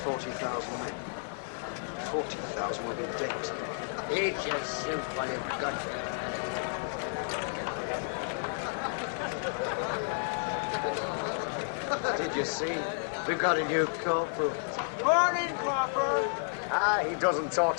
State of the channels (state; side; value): silent; right; 57 dB below the other